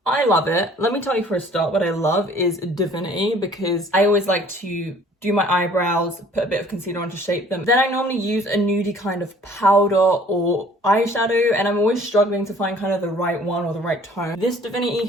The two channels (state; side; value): normal; both; correlation 0.54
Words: I love it. Let me tell you for a start, what I love is Divinity, because I always like to do my eyebrows, put a bit of concealer on to shape them. Then I normally use a nudie kind of powder or eyeshadow, and I'm always struggling to find kind of the right one or the right tone. This Divinity